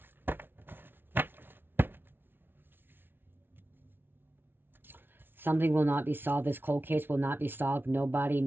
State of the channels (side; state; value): left; late; 0.10 ms